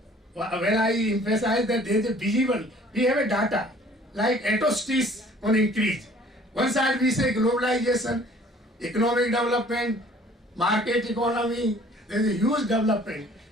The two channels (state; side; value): normal; both; correlation 0.54